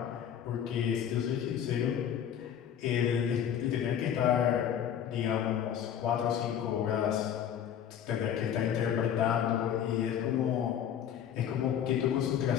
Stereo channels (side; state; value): right; quieter; 9.3 dB